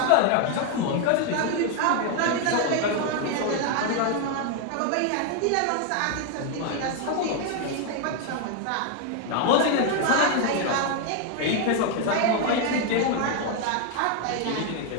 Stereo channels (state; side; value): different; both; correlation 0.01